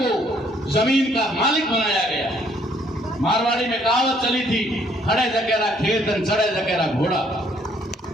जमीन का मालिक बनाया गया। मारवाड़ी में कहावत चली थी, खड़े जकेरा खेत चढ़े जकेरा घोड़ा,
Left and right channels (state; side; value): normal; both; correlation 0.65